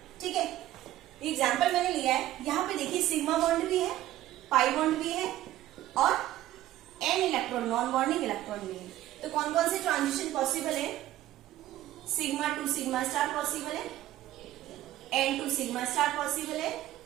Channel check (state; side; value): quieter; left; 14.3 dB